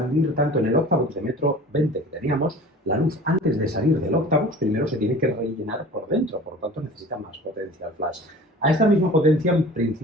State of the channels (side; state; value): both; normal; correlation 0.42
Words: tanto en el octavox de 1,20 m que teníamos, la luz antes de salir del octavox primero se tiene que rellenar por dentro, por lo tanto necesita más potencia el flash. A esta misma potencia, en